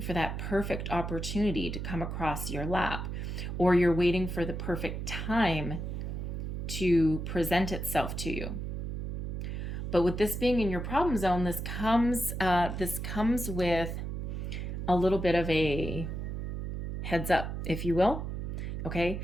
for that perfect opportunity to come across your lap, or you're waiting for the perfect time to present itself to you. But with this being in your problem zone, this comes with a little bit of a heads up, if you will, okay,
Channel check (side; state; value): right; noise; hum, 4 dB below the sound